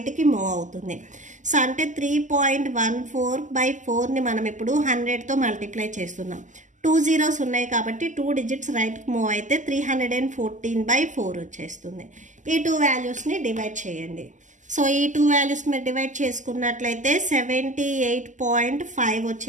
మూవ్ అవుతుంది. సో అంటే 3.14 by 4ని మనం ఇప్పుడు 100తో మల్టిప్లై చేస్తున్నాం. 2 zeros ఉన్నాయి కాబట్టి 2 digits రైట్కి మూవ్ అయితే 314 by 4 వచ్చేస్తుంది. ఈ 2 వాల్యూస్ని డివైడ్ చేయండి. సో ఈ 2 వాల్యూస్ మీరు డివైడ్ చేసుకున్నట్లయితే 78.5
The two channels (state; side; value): late; left; 0.36 ms